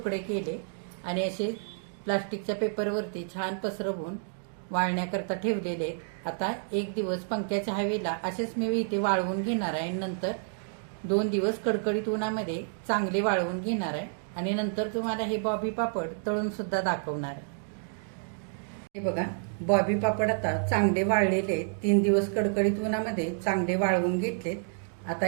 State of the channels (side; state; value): left; silent; digital silence